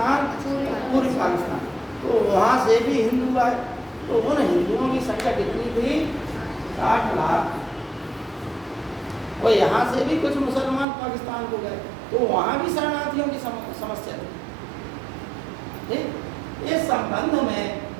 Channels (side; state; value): left; drops out; at 10.9 s